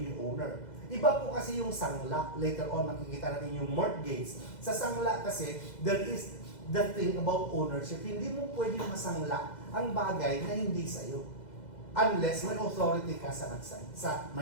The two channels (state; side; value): late; right; 2.0 ms